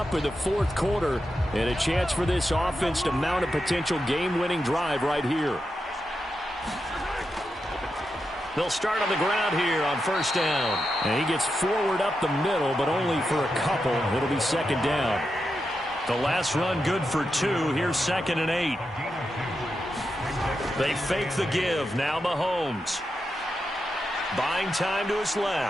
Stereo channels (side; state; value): both; normal; correlation 0.87